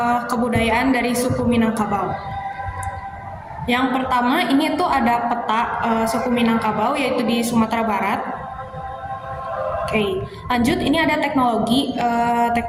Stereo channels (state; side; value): identical; both; correlation 1.00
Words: kebudayaan dari suku Minangkabau. Yang pertama ini tuh ada peta suku Minangkabau yaitu di Sumatera Barat. Oke, lanjut ini ada teknologi.